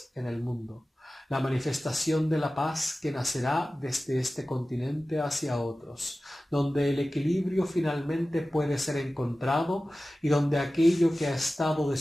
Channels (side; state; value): both; normal; correlation 0.96